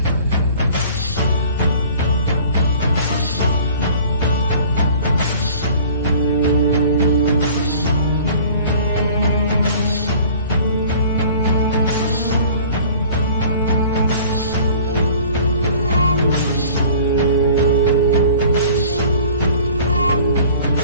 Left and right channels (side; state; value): both; inverted; correlation -0.48